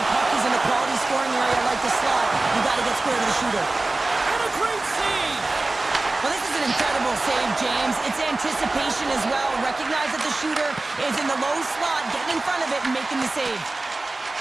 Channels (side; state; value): left; quieter; 3.1 dB